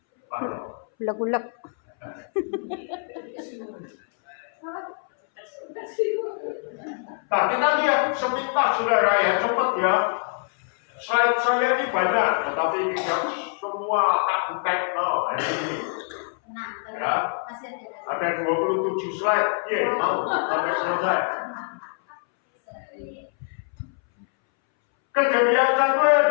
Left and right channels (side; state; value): right; silent; 62 dB below the other